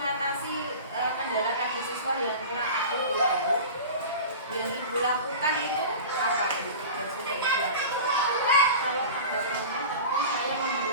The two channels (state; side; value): inverted; both; correlation -0.34